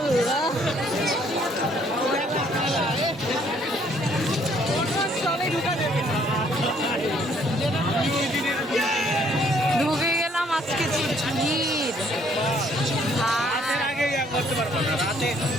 ঢুকে গেলাম। আজকে যে ভিড়,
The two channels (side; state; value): both; normal; correlation 0.64